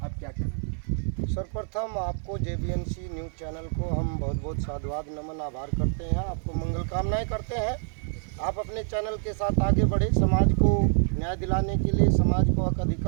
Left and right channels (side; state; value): left; silent; 57 dB below the other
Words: आप क्या कहना? सर्वप्रथम आपको JBNC न्यूज़ चैनल को हम बहुत बहुत साधुवाद नमन आभार करते हैं, आपको मंगल कामनाएं करते हैं। आप अपने चैनल के साथ आगे बढ़े, समाज को न्याय दिलाने के लिए, समाज को हक